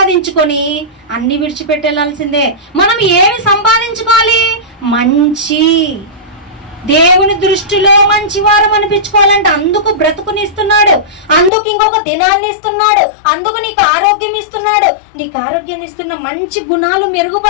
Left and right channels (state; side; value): drops out; right; at 11.5 s